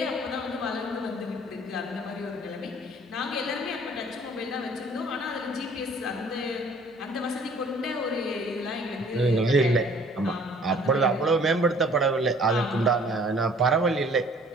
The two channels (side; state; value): both; normal; correlation 0.55